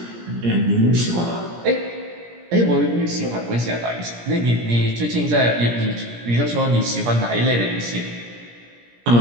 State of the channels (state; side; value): late; left; 17 ms